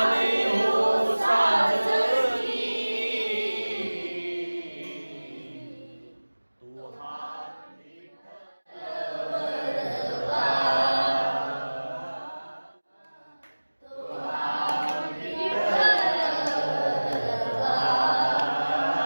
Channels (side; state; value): both; inverted; correlation -1.00